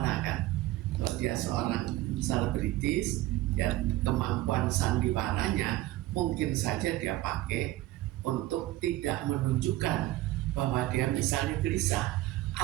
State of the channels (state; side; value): quieter; left; 16.6 dB